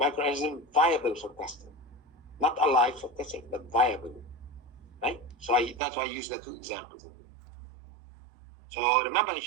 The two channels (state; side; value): drops out; left; at 5.8 s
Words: viable for testing. Not alive for testing, but viable. Right? So that's why I use the two examples. So remember, if